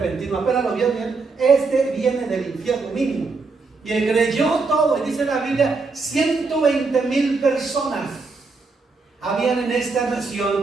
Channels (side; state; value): left; quieter; 4.1 dB